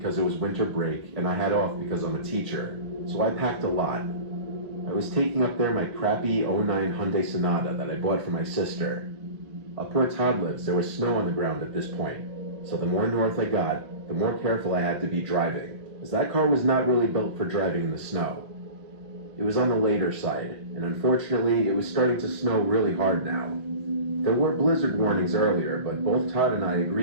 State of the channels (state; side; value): late; left; 1.4 ms